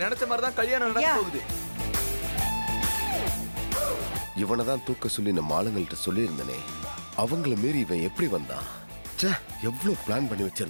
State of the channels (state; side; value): inverted; both; correlation -1.00